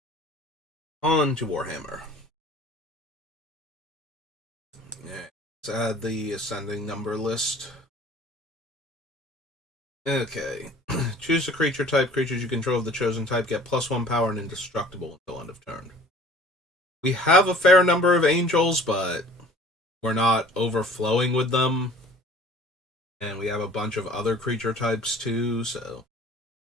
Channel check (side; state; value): both; normal; correlation 0.50